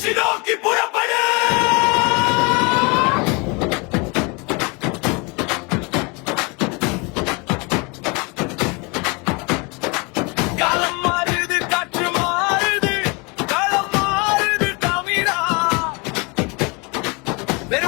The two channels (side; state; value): right; quieter; 29.3 dB